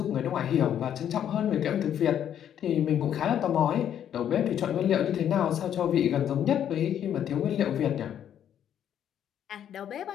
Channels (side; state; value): right; quieter; 9.8 dB